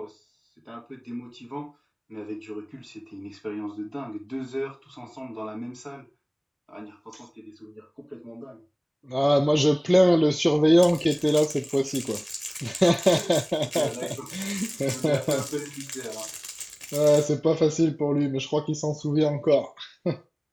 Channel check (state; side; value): identical; both; correlation 1.00